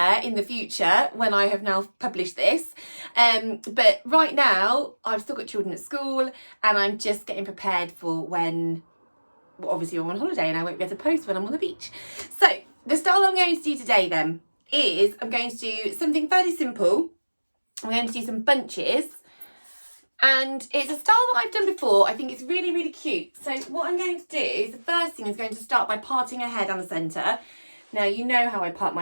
in the future when I have now published this. But right now I've still got children at school and I'm just getting prepared for when, well, obviously I'm on holiday and I won't be able to post when I'm on the beach. So the style I'm going to do today then is I'm going to do something fairly simple. I'm going to do some bunches and it's a style that I've done before. I think it's really, really cute. So what I'm going to do is the first thing is going to start by parting her hair down the centre. Now, you know how I part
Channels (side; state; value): both; inverted; correlation -1.00